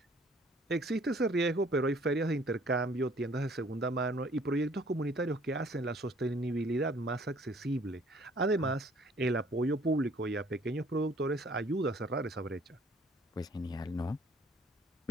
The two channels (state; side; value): normal; both; correlation 0.58